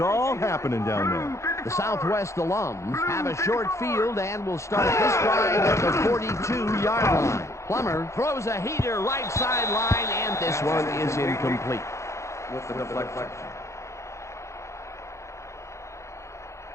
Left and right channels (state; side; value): late; right; 0.14 ms